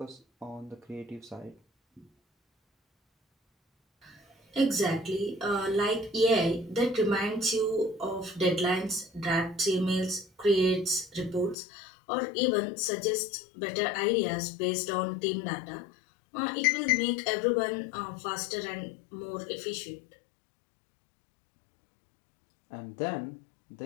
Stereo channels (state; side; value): drops out; right; at 11.6 s